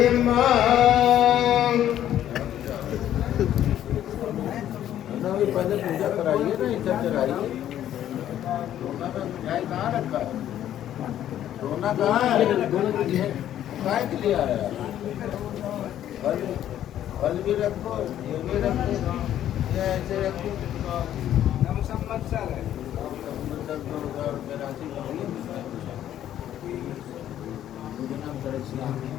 भी पहले पूजा कराइए ना इधर चढ़ाइए। सोना का मिठाई कहाँ रखा है? सोना कहाँ है? काय के लिए आया? फल फल भी रखो, ये भी रखो, या ऐसे रखो। नम संवत्सर है। संवत्सर 2000 राशि करिए। मुझे नाम करें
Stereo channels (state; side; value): quieter; right; 11.5 dB